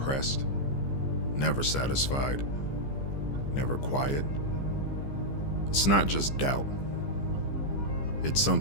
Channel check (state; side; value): late; right; 15 ms